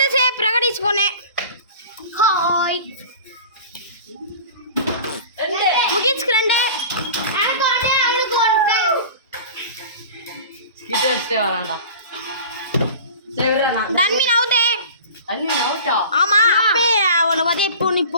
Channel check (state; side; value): inverted; both; correlation -0.39